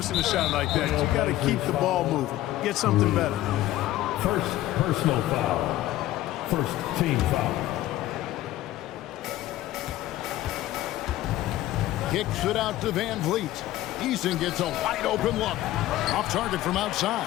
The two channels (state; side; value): quieter; right; 15.1 dB